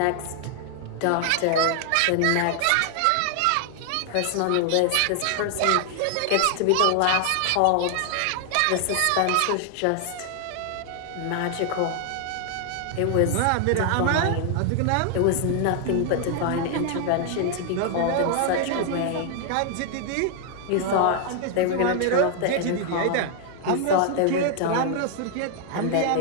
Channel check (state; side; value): different; both; correlation 0.00